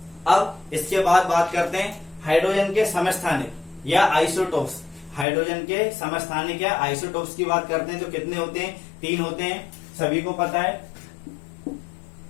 अब इसके बाद बात करते हैं हाइड्रोजन के समस्थानिक या आइसोटोप्स। हाइड्रोजन के समस्थानिक या आइसोटोप्स की बात करते हैं तो कितने होते हैं? 3 होते हैं, सभी को पता है।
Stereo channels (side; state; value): right; drops out; at 5.2 s